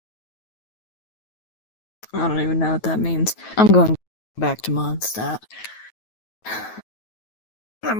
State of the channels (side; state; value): right; late; 9.2 ms